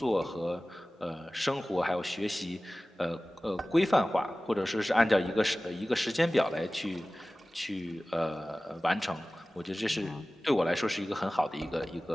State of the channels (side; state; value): both; normal; correlation 0.97